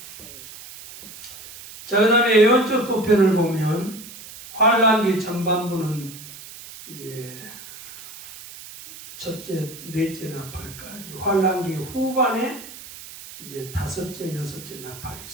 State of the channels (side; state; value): right; noise; hiss, 15 dB below the sound